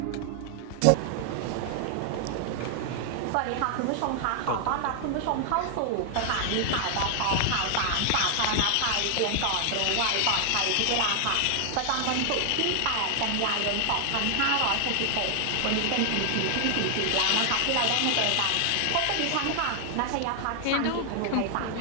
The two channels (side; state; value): both; different; correlation 0.00